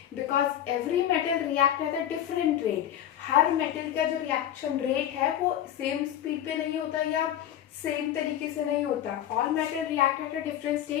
Because every metal react at a different rate. Her metal का जो reaction rate है वो same speed पे नहीं होता या सेम तरीके से नहीं होता. All metal react at a different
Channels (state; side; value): quieter; right; 11.1 dB